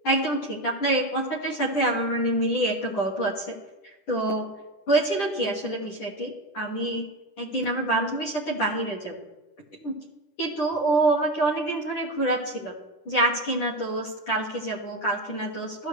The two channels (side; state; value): right; late; 10 ms